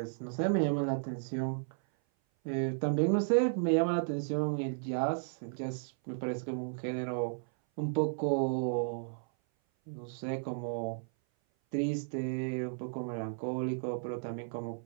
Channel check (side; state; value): left; silent; 55 dB below the other